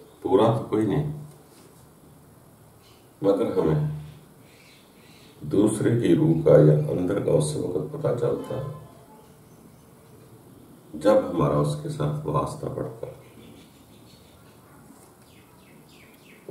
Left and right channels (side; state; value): both; identical; correlation 1.00